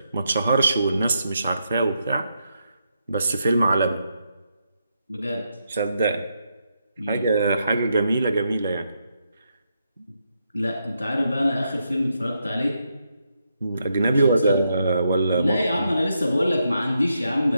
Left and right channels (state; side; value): inverted; both; correlation -0.81